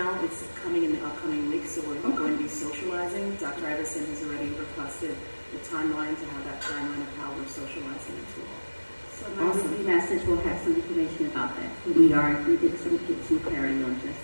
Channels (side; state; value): both; inverted; correlation -1.00